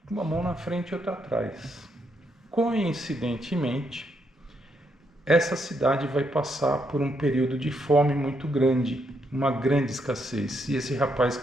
com uma mão na frente e outra atrás. Coincidentemente, essa cidade vai passar por um período de fome muito grande, uma grande escassez, e esse rapaz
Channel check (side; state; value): both; normal; correlation 0.77